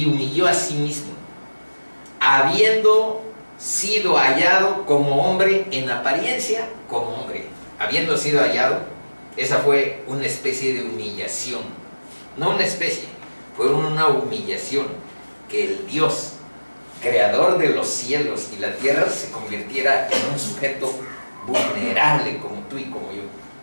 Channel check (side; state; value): both; inverted; correlation -1.00